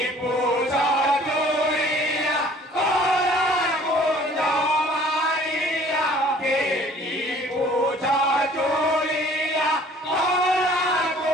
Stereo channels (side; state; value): both; normal; correlation 0.53